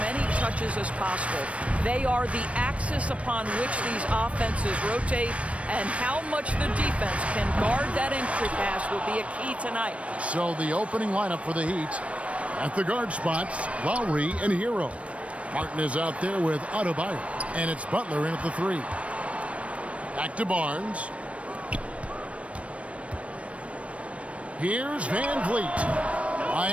many touches as possible. They are the axis upon which these offenses rotate, and how much the defense can guard that entry pass will be a key tonight. So the opening lineup for the Heat. At the guard spots, Lowry and Hero. Martin is out there with Adebayo, and it's Butler in at the 3. Back to Barnes. Here's Van Vliet.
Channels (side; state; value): left; late; 0.063 ms